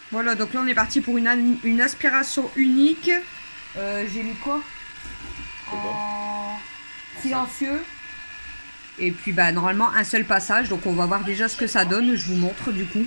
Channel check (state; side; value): inverted; both; correlation -1.00